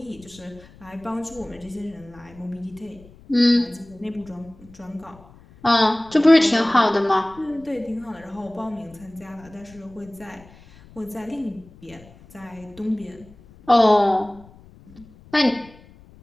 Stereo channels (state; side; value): noise; left; rumble, 24 dB below the sound